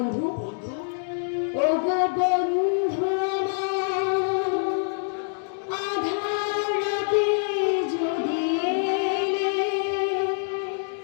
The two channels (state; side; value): silent; right; digital silence